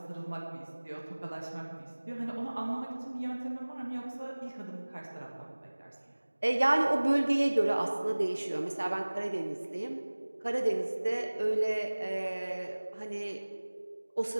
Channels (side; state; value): both; inverted; correlation -1.00